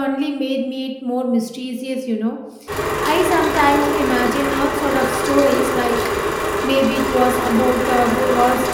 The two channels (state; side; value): identical; both; correlation 1.00